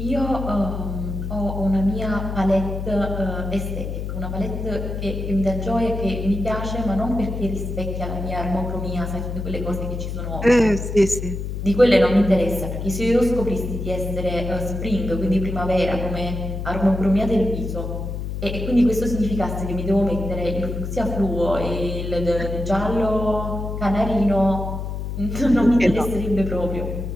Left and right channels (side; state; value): left; noise; hum, 5 dB below the sound